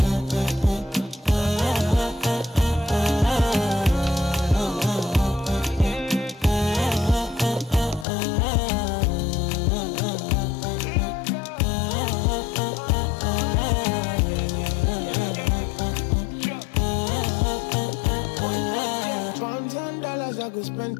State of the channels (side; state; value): right; drops out; at 8.1 s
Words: $1,000 I go spend.